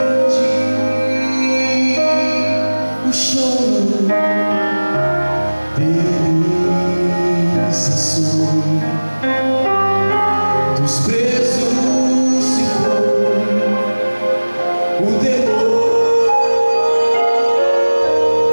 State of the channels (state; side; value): inverted; both; correlation -1.00